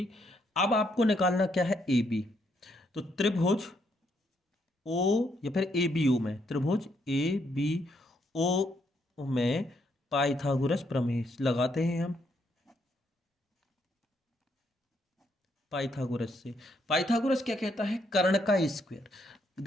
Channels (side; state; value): both; normal; correlation 0.74